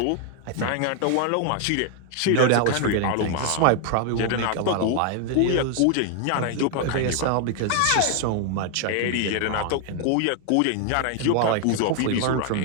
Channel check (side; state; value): both; different; correlation 0.00